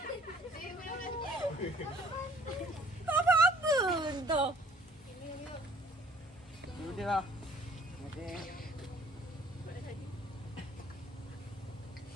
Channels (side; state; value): both; normal; correlation 0.57